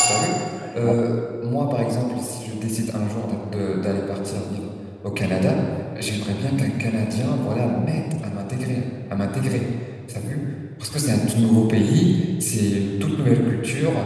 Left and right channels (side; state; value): both; identical; correlation 1.00